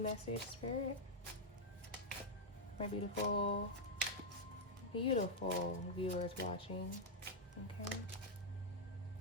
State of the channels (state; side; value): normal; both; correlation -0.03